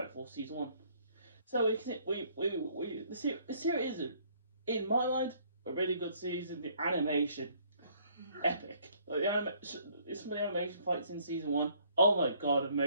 Force season 1. So the series is, in my mind, a really good season. The animation, epic. Like some of the animation fights in season 1. Oh my god,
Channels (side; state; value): both; inverted; correlation -0.63